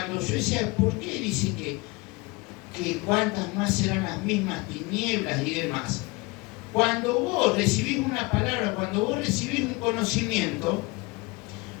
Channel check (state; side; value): quieter; right; 25.4 dB